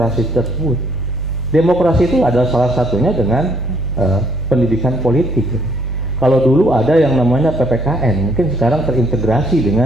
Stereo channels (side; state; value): both; normal; correlation 0.65